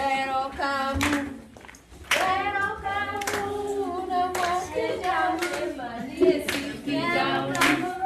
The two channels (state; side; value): identical; both; correlation 1.00